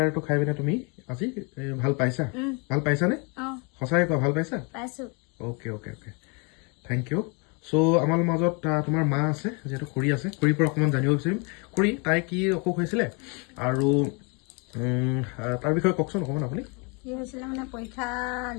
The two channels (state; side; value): quieter; right; 32.8 dB